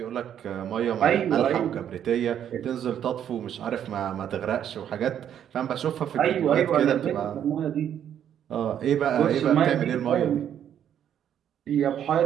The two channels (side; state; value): left; quieter; 9.7 dB